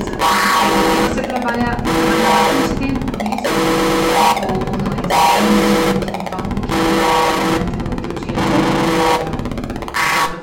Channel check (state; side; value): identical; both; correlation 1.00